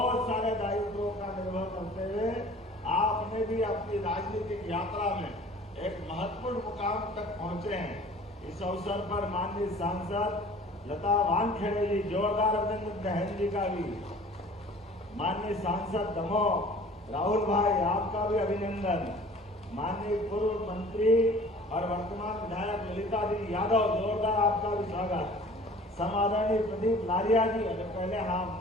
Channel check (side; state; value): both; normal; correlation 0.47